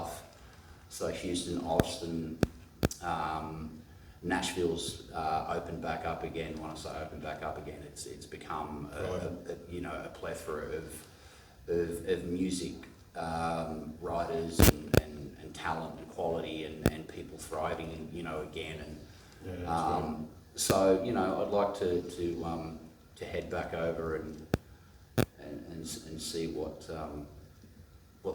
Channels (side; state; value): both; identical; correlation 1.00